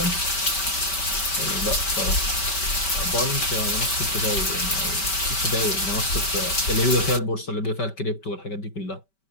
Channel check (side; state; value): right; late; 5.2 ms